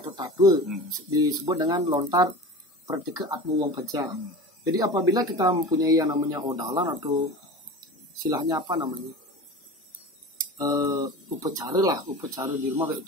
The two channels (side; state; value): both; normal; correlation 0.34